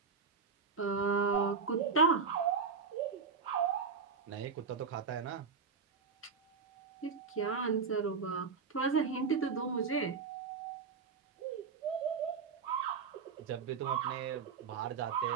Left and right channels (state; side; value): quieter; left; 5.5 dB